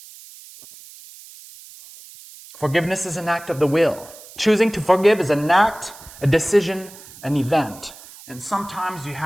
Forgiveness is an act of the will. Choosing to forgive is an act, a decision, an event. And sometimes you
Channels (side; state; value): right; noise; hiss, 19 dB below the sound